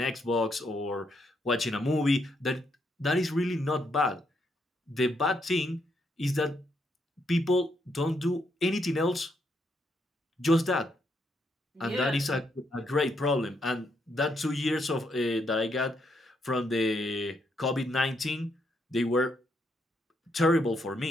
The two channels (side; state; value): both; normal; correlation 0.76